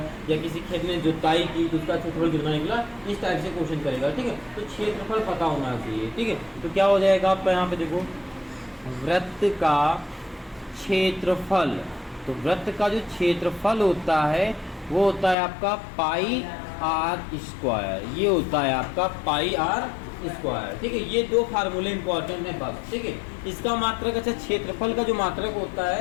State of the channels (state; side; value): drops out; right; at 15.4 s